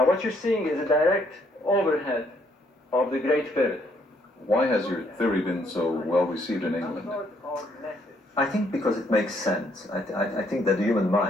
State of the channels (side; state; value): both; normal; correlation 0.69